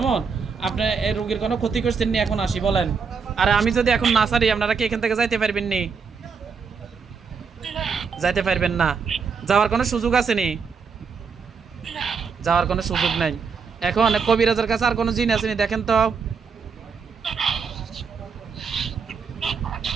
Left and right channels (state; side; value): quieter; left; 5.7 dB